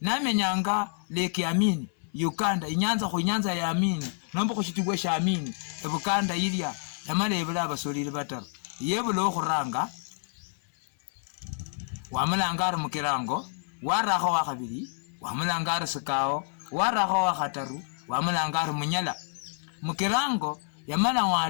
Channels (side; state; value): right; silent; digital silence